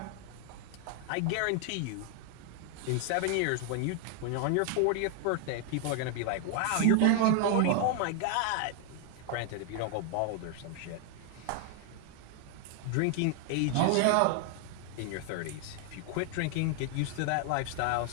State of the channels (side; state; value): both; different; correlation 0.00